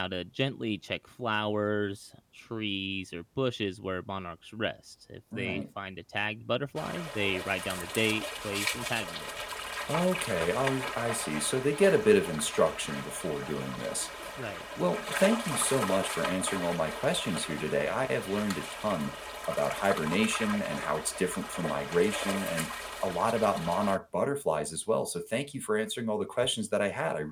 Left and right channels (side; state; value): both; identical; correlation 1.00